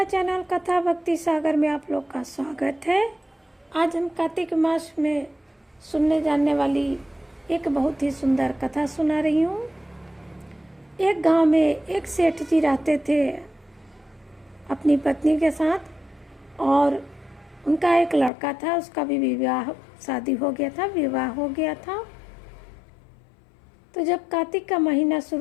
चैनल कथा भक्ति सागर में आप लोग का स्वागत है। आज हम कार्तिक मास में सुनने जाने वाली एक बहुत ही सुंदर कथा सुना रही हूँ। एक गांव में एक सेठ जी रहते थे अपनी पत्नी के साथ, और उनका एक लड़का था। उसका भी शादी हो गया था, विवाह हो गया था। तो जब कार्तिक का महीना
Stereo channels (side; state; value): right; drops out; at 18.3 s